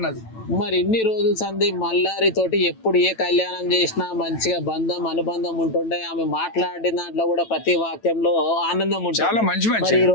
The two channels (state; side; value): late; right; 9.1 ms